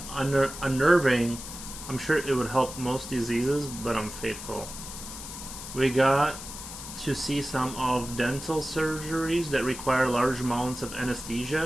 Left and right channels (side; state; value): left; noise; hiss, 11 dB below the sound